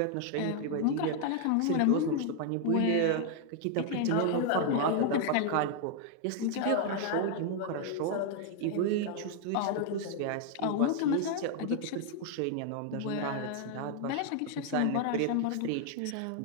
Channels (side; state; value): both; different; correlation 0.00